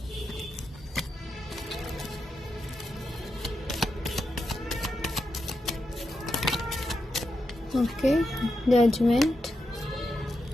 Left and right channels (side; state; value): both; normal; correlation 0.86